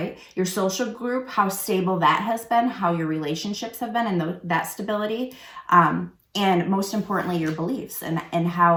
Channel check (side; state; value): both; identical; correlation 1.00